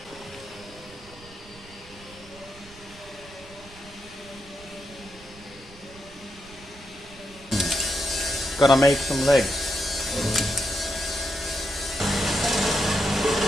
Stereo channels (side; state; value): right; noise; rumble, 21 dB below the sound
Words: Gonna make some legs.